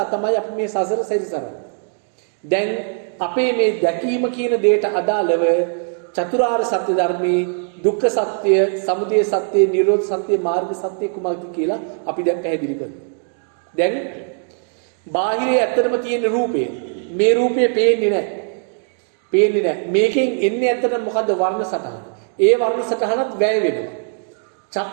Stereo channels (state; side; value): silent; left; 56 dB below the other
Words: තමයි අපි මේ සසර සැරිසරන්නේ. දැන් අපේ මේ දැකීම කියන දෙයට අදාළව චතුරාර්ය සත්‍ය ධර්මයේ දුක්ඛ සත්‍ය, සමුදය සත්‍ය, නිරෝධ සත්‍ය, මාර්ග සත්‍ය කුමක්ද කියලා අපි දැන් පැහැදිලි කරනවා. දැන් බාහිරේ ඇත්තටම තියෙන රූපය, මේ රූපය පේන්නේ නැහැ. මේකෙන් එන්නේ ඇත්තටම මොකද්ද? වර්ණ සටහන. ඒ වර්ණ සටහනත් වැය වෙනවා.